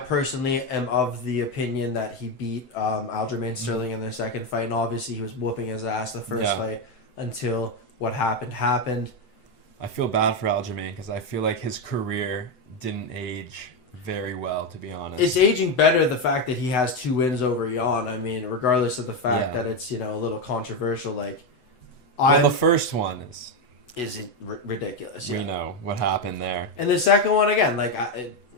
am of the opinion that he beat Aljamain Sterling in their second fight, and obviously he was whooping his ass the first fight until what happened. I feel bad for Aljamain because I feel like his career didn't age very well, to be honest. It's aging better, the fact that he has 2 wins over Yan. I mean, regardless of the fact that it's, you know, a little controversial, like... the first one is ridiculous, You know what happened there. And the second one, again, like... I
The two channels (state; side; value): late; right; 7.9 ms